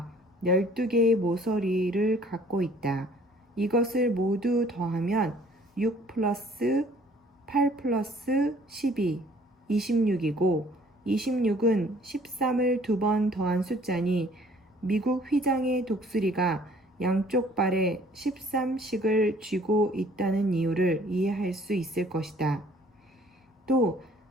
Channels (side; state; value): both; normal; correlation 0.56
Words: 12개의 모서리를 갖고 있다. 이것을 모두 더하면 6 플러스 8 플러스 12, 26이고 26은 13을 2번 더한 숫자니 미국 휘장의 독수리가 양쪽 발에 13씩을 쥐고 있다는 이유를 이해할 수 있을 것이다. 또